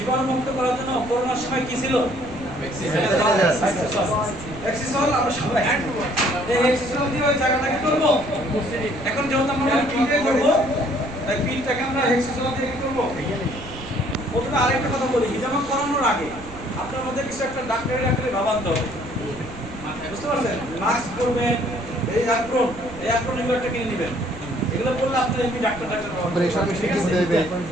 করার জন্য করোনার সময় কি ছিল? এক্সিসল। আমরা সবাই এই এক্সিসল দিয়ে ওই জায়গাটাকে করব। এখন যেহেতু আমরা পিঠে করব, তাই পিঠটাকে আমরা এক্সিসল দিয়ে কি করব? প্রথমে আরেকটা কথা বলি, হিজামা করানোর আগে আপনার মধ্যে কিছু একটা ডাক্তারি ভাবান্ত হবে, বুঝতে পারছেন? মাস্ক পরবেন, এই অ্যাপ্রন এগুলো একটা কিনে নেবেন। এগুলো বললে আপনি এমনি ডাক্তার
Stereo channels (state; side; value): noise; right; rumble, 16 dB below the sound